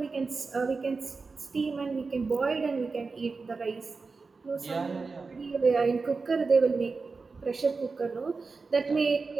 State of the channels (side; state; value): left; quieter; 4.3 dB